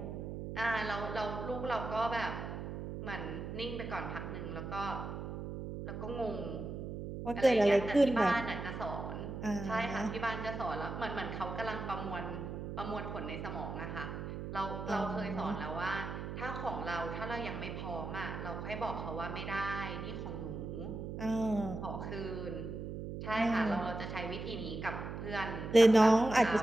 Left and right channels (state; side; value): noise; right; hum, 6 dB below the sound